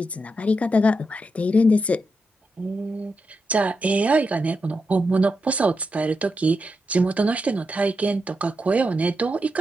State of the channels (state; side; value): normal; both; correlation 0.86